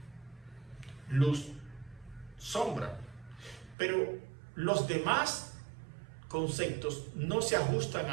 Luz, sombra. Pero los demás conceptos no se ajustan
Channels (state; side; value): drops out; left; at 3.8 s